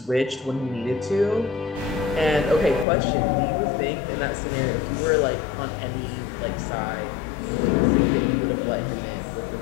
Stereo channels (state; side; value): drops out; right; at 2.9 s